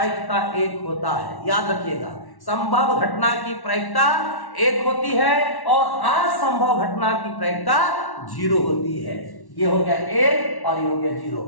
1 होता है, याद रखिएगा। संभव घटना की प्रायिकता 1 होती है और असंभव घटना की प्रायिकता 0 होती है। ये हो गया 1 और ये हो गया 0।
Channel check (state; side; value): late; right; 1.1 ms